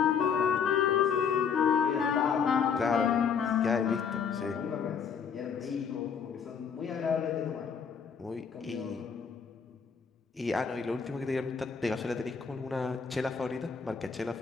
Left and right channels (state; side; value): quieter; right; 6.5 dB